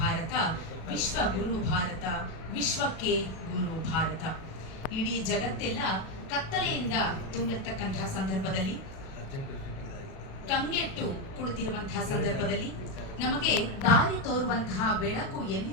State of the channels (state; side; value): late; right; 37 ms